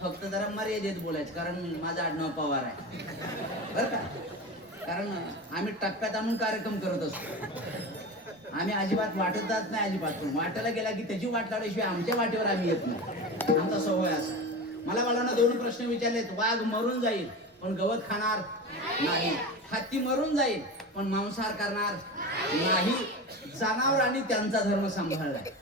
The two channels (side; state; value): both; normal; correlation 0.27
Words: फक्त जरा मर्यादेत बोलायचं, कारण माझं आडनाव पवार आहे बरं का. कारण आम्ही टप्प्यात आणून कार्यक्रम करत असतो. आम्ही अजिबात वाटत जात नाही, अजिबात. पण वाटायला गेला की त्याची वाट लावल्याशिवाय आमच्या वाटेवर आम्ही येत नाही. आमचा स्वभाव असा. मला बाळांना 2 प्रश्न विचारलेत. वाघ मरून जाईल पण गवत खाणार नाही. हत्ती मरून जाईल पण मांसाहार करणार नाही. जनावरांनी त्यांचा धर्म सांभाळलाय.